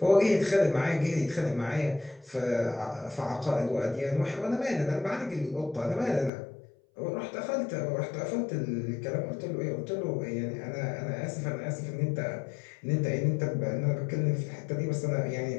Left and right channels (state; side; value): drops out; right; at 6.3 s